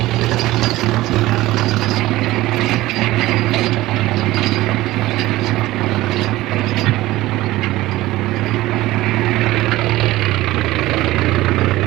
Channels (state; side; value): quieter; left; 17.4 dB